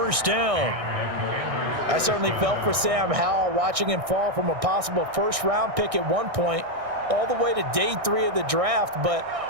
down. I certainly felt for Sam Howell watching him fall from a possible first-round pick at one point all the way to day 3 of the draft, but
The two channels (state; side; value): late; left; 1.6 ms